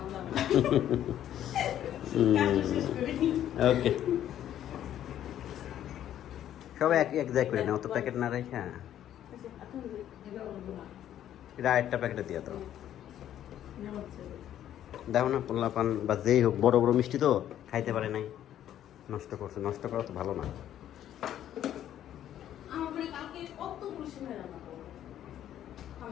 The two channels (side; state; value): right; quieter; 11.2 dB